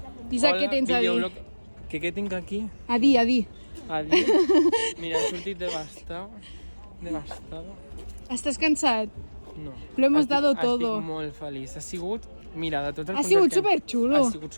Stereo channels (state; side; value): inverted; both; correlation -1.00